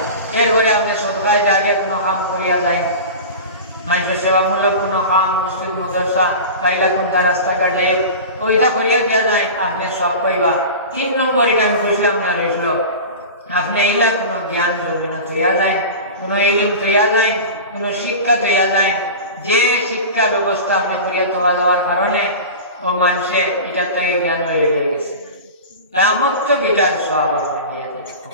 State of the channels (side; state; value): both; inverted; correlation -0.31